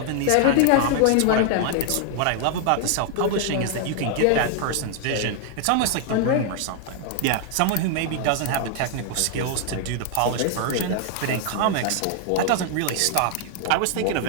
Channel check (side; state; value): both; different; correlation 0.00